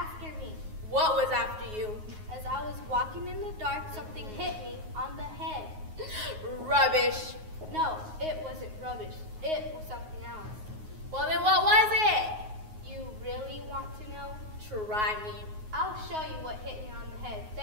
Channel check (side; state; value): left; late; 9.4 ms